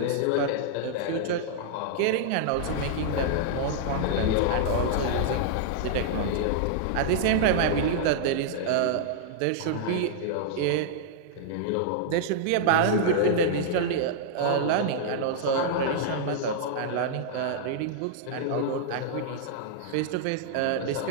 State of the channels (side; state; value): both; different; correlation -0.01